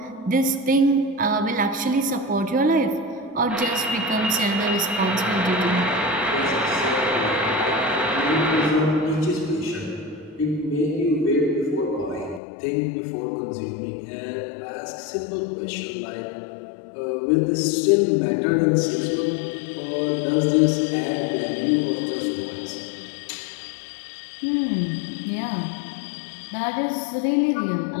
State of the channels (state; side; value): drops out; right; at 12.4 s